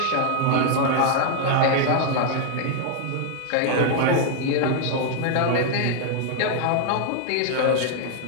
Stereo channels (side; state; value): both; different; correlation 0.00